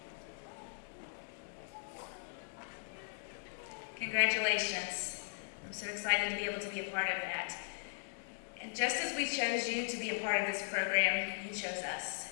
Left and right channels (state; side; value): silent; right; digital silence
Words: Congratulations. I'm so excited to be able to be a part of that. And just as we chose you to be a part of this program, you chose us.